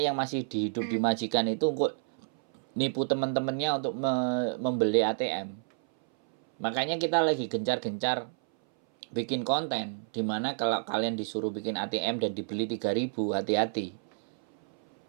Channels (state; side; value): silent; left; 58 dB below the other